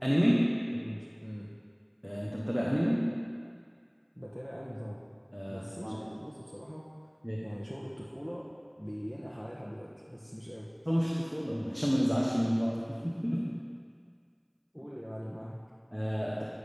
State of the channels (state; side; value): identical; both; correlation 1.00